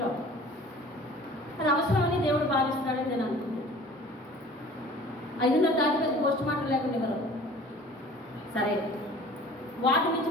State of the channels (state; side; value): normal; both; correlation 0.46